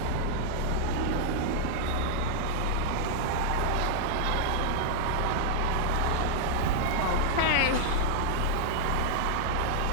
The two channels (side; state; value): both; different; correlation -0.01